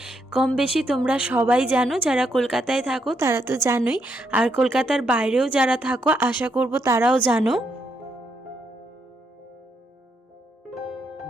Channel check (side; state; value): both; normal; correlation 0.77